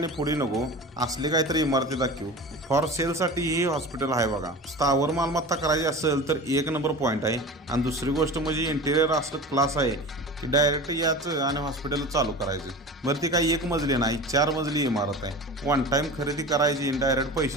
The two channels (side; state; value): both; normal; correlation 0.34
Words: पुढे नको, असली काहीतरी इमारती दाखवू। फॉर सेलसाठी ही हॉस्पिटल आहे बघा, स्थावर मालमत्ता करायची असेल तर एक नंबर पॉईंट आहे। आणि दुसरी गोष्ट म्हणजे इंटेरियर असं क्लास आहे की डायरेक्ट याचं आणि हॉस्पिटल चालू करायचं। बरं ती काही एक मजली नाही 4 मजली इमारत आहे। वन टाइम खरेदी करायची, डायरेक्ट